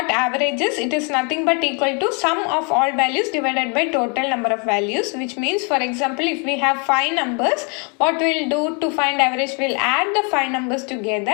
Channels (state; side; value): quieter; right; 35.5 dB